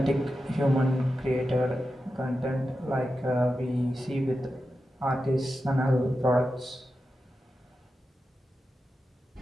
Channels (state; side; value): normal; both; correlation 0.90